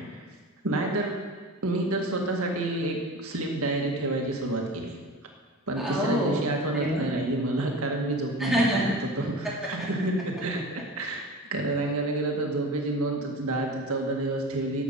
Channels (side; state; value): both; normal; correlation 0.34